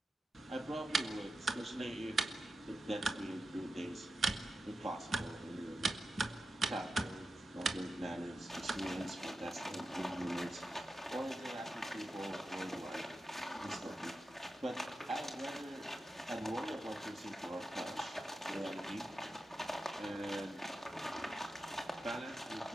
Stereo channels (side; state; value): both; normal; correlation 0.90